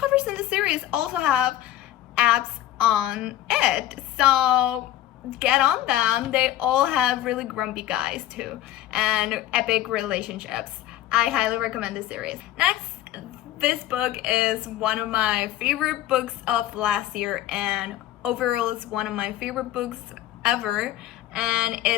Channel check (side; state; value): right; quieter; 13.5 dB